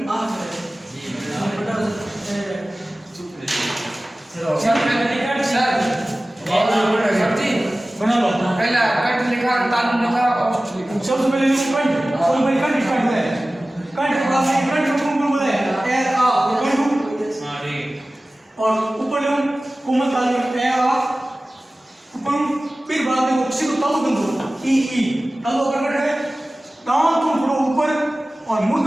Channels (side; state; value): both; normal; correlation 0.97